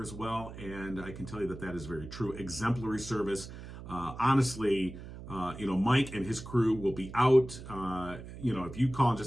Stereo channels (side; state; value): right; noise; hum, 13 dB below the sound